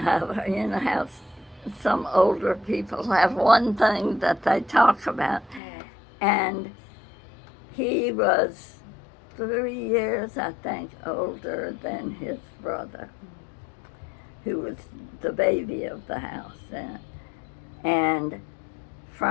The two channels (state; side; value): drops out; right; at 5.6 s